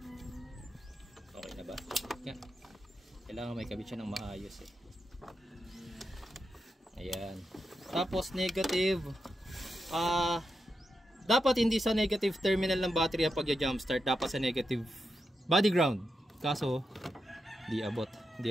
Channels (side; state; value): both; normal; correlation 0.87